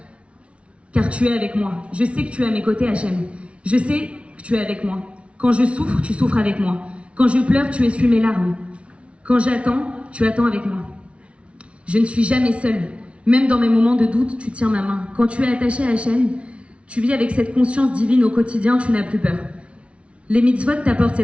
car tu es avec moi. Je sais que tu es à mes côtés, Hachem. Je sais que tu es avec moi. Quand je souffre, tu souffres avec moi. Quand je pleure, tu essuies mes larmes. Quand j'attends, tu attends avec moi. Je ne suis jamais seule. Même dans mes moments de doute, tu tiens ma main. Quand tu es attaché à Hachem, tu vis avec cette conscience divine au quotidien, tu n'as plus peur. Les mitzvot t'apportent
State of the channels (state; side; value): late; left; 0.061 ms